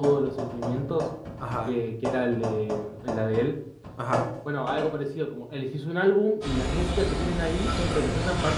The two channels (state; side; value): identical; both; correlation 1.00